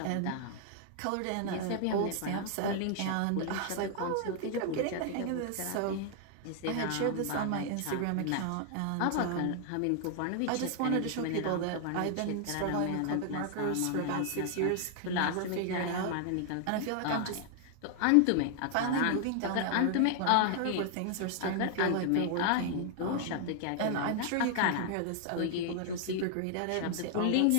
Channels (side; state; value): both; different; correlation 0.00